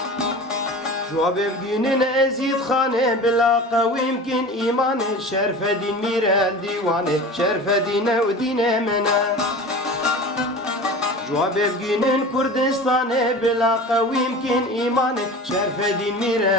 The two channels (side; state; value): both; normal; correlation 0.35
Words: جواب بگینن ازید خانه بلا قوی يمكن ایمان شرف دین میره دیوانه شرف دینه و دینه منه جواب بگینن کردستانه بلا قوی يمكن ایمان شرف دین